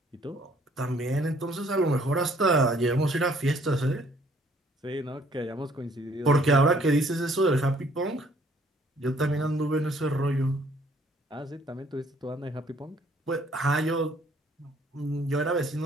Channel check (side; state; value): both; normal; correlation 0.61